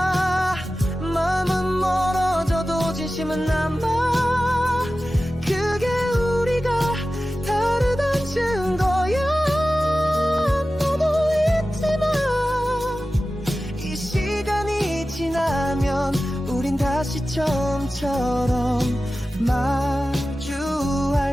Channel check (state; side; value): normal; both; correlation 0.95